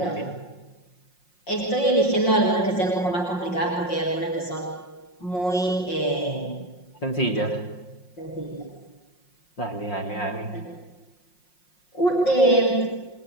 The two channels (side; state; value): right; late; 5.6 ms